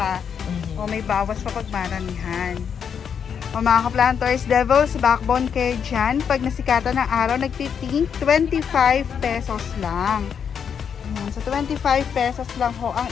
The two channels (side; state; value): right; quieter; 7.4 dB